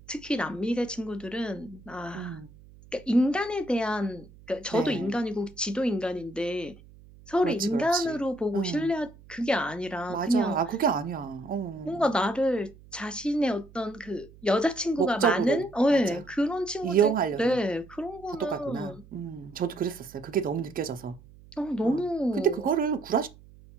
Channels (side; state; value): right; noise; hum, 22 dB below the sound